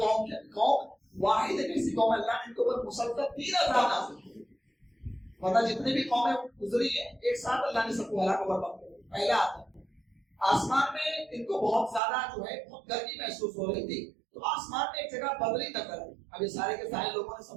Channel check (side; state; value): left; drops out; at 12.0 s